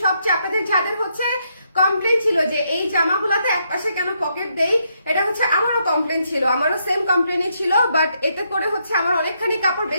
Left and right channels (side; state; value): both; inverted; correlation -0.77